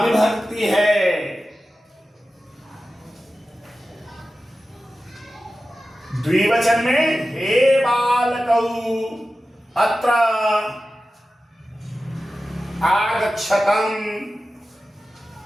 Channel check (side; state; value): both; normal; correlation 0.94